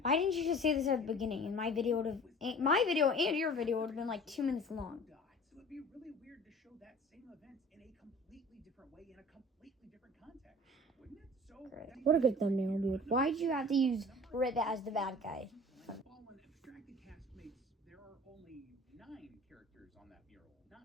Why didn't you just say this at the beginning? And my video and your video would have been like 2 minutes long. So it'd be really weird to show that same event in a completely different way, in a completely different context, wouldn't it? So What a good thumbnail, dude. Why'd you have to use Rip as the bad guy? Fallen abstracted castmates, there are only 9 characters on that mural,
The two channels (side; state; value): both; normal; correlation 0.44